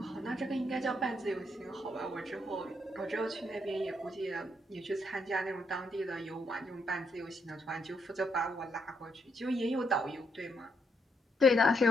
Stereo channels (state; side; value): normal; both; correlation 0.76